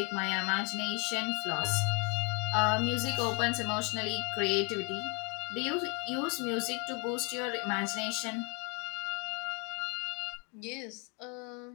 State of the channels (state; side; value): quieter; right; 31.8 dB